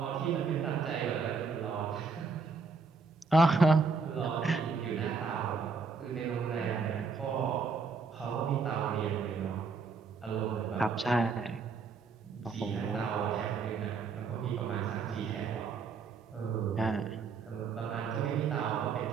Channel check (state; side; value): quieter; left; 4.9 dB